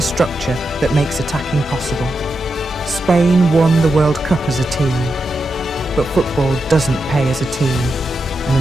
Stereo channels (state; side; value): normal; both; correlation 0.87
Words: structure that makes attacking possible. Spain won the World Cup as a team, but football doesn't pay as a team, and